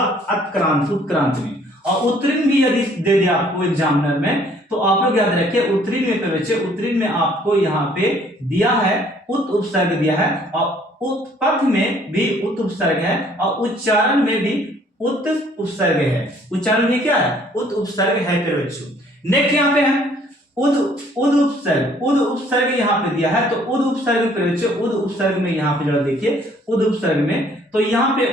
उत्क्रांत, उत्क्रांत में। और उत्तीर्ण भी यदि दे दे आपको एग्जामिनर में तो आप लोग याद रखिए उत्तीर्ण में बच्चे, उत्तीर्ण में आपको यहाँ पे दिया है उत उपसर्ग दिया है, और उत्पथ में भी उत उपसर्ग है, और उच्चारण में भी उत उपसर्ग है, उच्चारण में क्या है उत उपसर्ग है फिर बच्चों। नेक्स्ट यहाँ पे है उद, उद उपसर्ग, उद उपसर्ग यहाँ पे दिया है, तो उद उपसर्ग पे बच्चे, उद उपसर्ग में यहाँ पे जरा देखिए उद उपसर्ग में, तो यहाँ पे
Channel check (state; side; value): normal; both; correlation 0.60